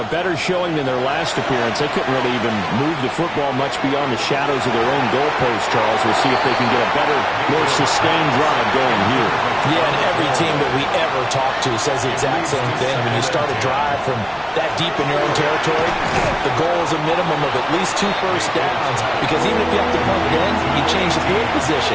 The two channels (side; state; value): both; identical; correlation 1.00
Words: better showing than their last appearance. They couldn't really even move the football much beyond the shadows of their own goalpost, Charles. We'll see if they can get a better, more sustained drive going here. Yeah, and every team that we ever talk to says the exact same thing. When you start a drive from that deep in your own territory, the goal is a minimum of at least 2 first downs. Because even if you have to punt it in, you change the field